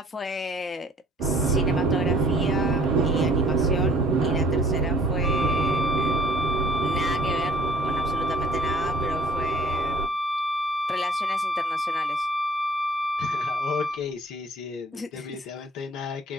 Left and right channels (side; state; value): both; normal; correlation 0.55